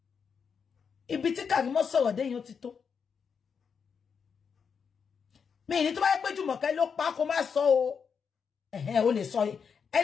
Ibi tí Karimo sọ̀rọ̀ dé yẹn ó ti tó. Mi ní tó bá yẹ pé Jùmọ̀kẹ́ ló pa kó má sọ o. O lè sọ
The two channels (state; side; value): quieter; right; 6.4 dB